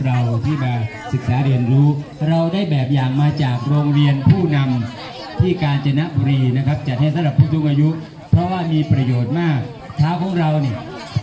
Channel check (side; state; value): both; identical; correlation 1.00